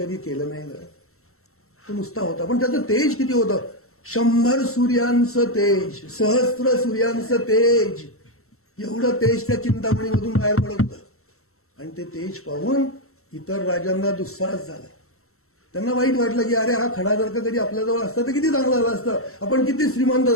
केलं नाही. तो नुसता होता. पण त्याचं तेज किती होतं? 100 सूर्यांचं तेज, सहस्त्र सूर्यांचं तेज. एवढं तेज त्या चिंतामणीमधून बाहेर पडत होतं. आणि ते तेज पाहून इतर राजांना दुस्साहस झाला. त्यांना वाईट वाटलं की अरे, हा खडा जर का कधी आपल्याजवळ असता तर किती चांगलं झालं असतं. आपण किती श्रीमंत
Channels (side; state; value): right; late; 0.63 ms